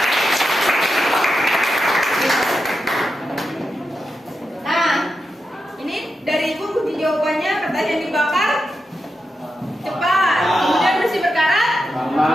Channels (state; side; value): normal; both; correlation 0.88